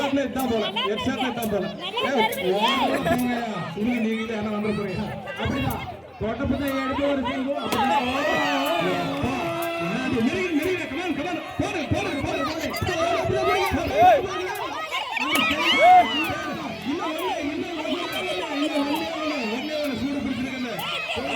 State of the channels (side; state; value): both; identical; correlation 1.00